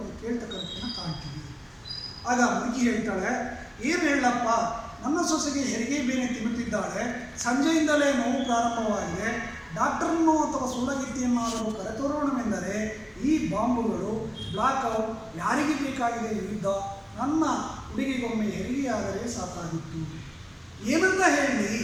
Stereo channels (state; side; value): identical; both; correlation 1.00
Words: ಕೇಳ್ತಕ್ಕಂಥದ್ದನ್ನು ಕಾಣ್ತೀವಿ. ಆಗ ಮುದುಕಿ ಹೇಳ್ತಾಳೆ, ಏನು ಹೇಳಪ್ಪ, ನನ್ನ ಸೊಸೆಗೆ ಹೆರಿಗೆ ಬೇನೆ ತಿನ್ನುತ್ತಿದ್ದಾಳೆ, ಸಂಜೆಯಿಂದಲೇ ನೋವು ಪ್ರಾರಂಭವಾಗಿದೆ, ಡಾಕ್ಟರನ್ನು ಅಥವಾ ಸೂಲಗಿತ್ತಿಯನ್ನಾದರೂ ಕರೆತರೋಣವೆಂದರೆ ಈ ಬಾಂಬುಗಳು, ಬ್ಲಾಕ್ಔಟ್, ಯಾರಿಗೆ ಬೇಕಾಗಿದೆ ಯುದ್ಧ, ನನ್ನ ಹುಡುಗಿಗೊಮ್ಮೆ ಹೆರಿಗೆಯಾದರೆ ಸಾಕಾಗಿತ್ತು. ಏನಂತ ಹೇಳಿ,